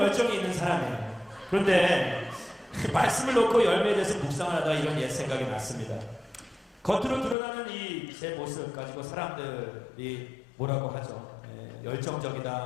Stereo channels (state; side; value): drops out; right; at 7.4 s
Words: 열정이 있는 사람이에요. 그런데 말씀을 놓고 열매에 대해서 묵상을 하다가 이런 옛 생각이 났습니다. 겉으로 드러나는 제 모습 가지고 사람들이 뭐라고 하죠?